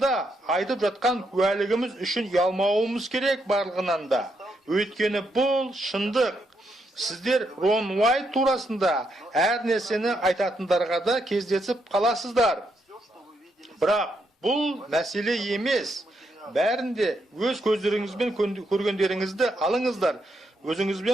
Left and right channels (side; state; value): both; normal; correlation 0.78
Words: айтып жатқан куәлігіміз үшін ұялмауымыз керек барлығынан да. Өйткені бұл шындық. Сіздер Рон Уайт турасында әр нәрсені айтатындарға да кездесіп қаласыздар. Бірақ бұл мәселе емес. Бәрінде өз көздеріңізбен көргендеріңізді алыңыздар.